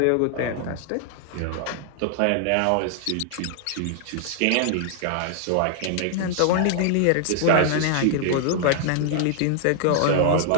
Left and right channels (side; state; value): both; different; correlation -0.01